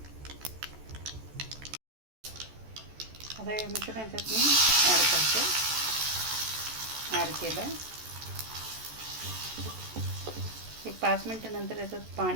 आता हे मिश्रण याच्यात मी ॲड केलं. एक 5 मिनटानंतर याच्यात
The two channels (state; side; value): late; left; 14 ms